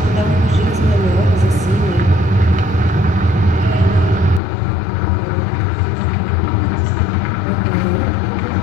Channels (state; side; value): drops out; right; at 4.4 s